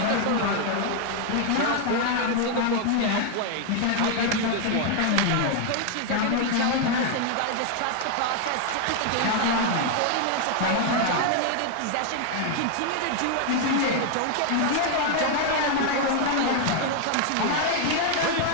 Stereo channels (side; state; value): both; different; correlation 0.00